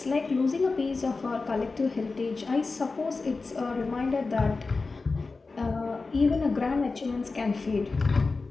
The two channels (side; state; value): right; quieter; 3.9 dB